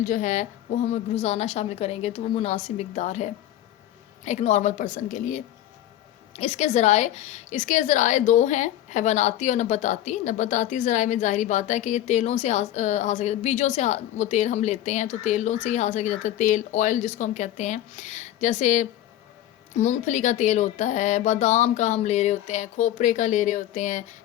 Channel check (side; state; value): right; quieter; 12.8 dB